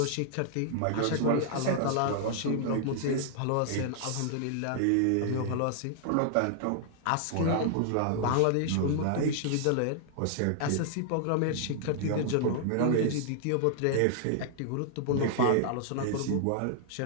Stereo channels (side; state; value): both; different; correlation 0.00